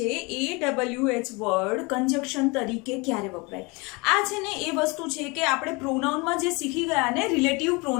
AWH વર્ડ કન્જક્શન તરીકે ક્યારે વપરાય? આ છે ને એ વસ્તુ છે કે આપણે પ્રોનાઉનમાં જે શીખી ગયા ને, રિલેટિવ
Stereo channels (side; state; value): right; quieter; 27.3 dB